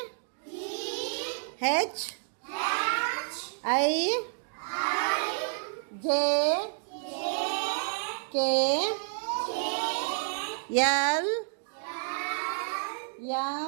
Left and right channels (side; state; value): left; silent; digital silence